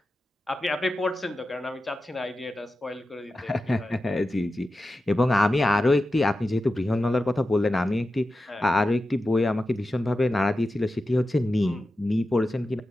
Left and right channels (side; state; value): both; normal; correlation 0.92